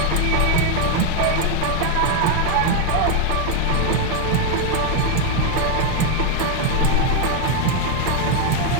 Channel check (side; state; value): both; different; correlation 0.01